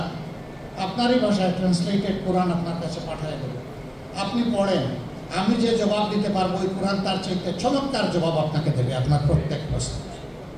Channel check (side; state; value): both; identical; correlation 1.00